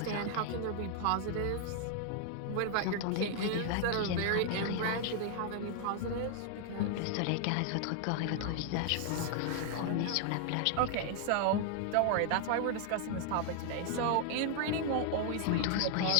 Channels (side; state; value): both; different; correlation 0.00